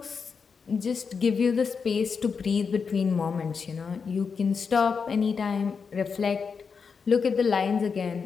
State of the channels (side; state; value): right; quieter; 5.7 dB